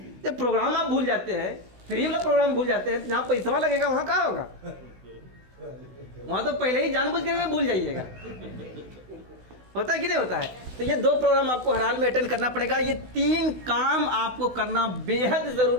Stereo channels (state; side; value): late; left; 16 ms